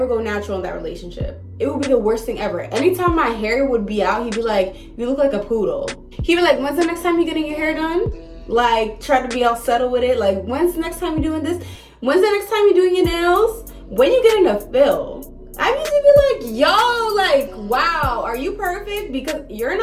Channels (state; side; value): identical; both; correlation 1.00